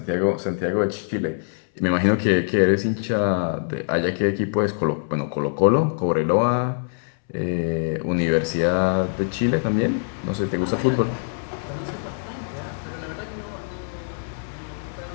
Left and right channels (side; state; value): right; silent; 63 dB below the other